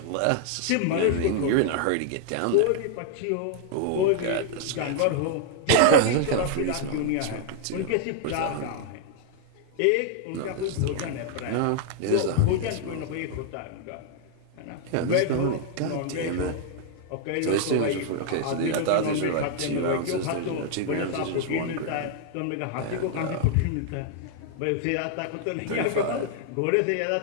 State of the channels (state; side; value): different; both; correlation 0.00